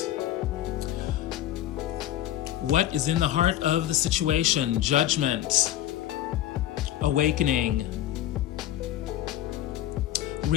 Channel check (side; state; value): right; quieter; 12.9 dB